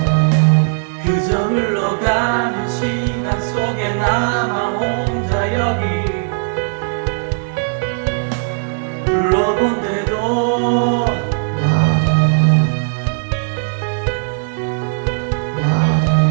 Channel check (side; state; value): left; silent; 57 dB below the other